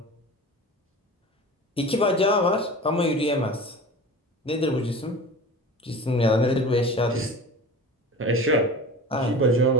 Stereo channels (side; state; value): both; normal; correlation 0.35